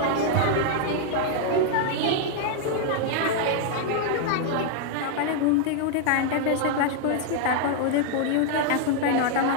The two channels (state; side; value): different; both; correlation 0.00